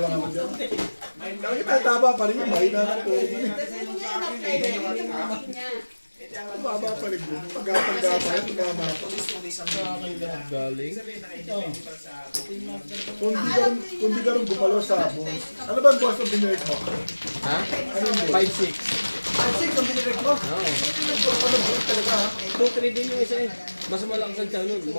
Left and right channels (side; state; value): both; inverted; correlation -1.00